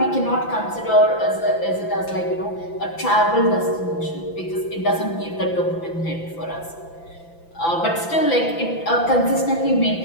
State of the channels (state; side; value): late; right; 6.0 ms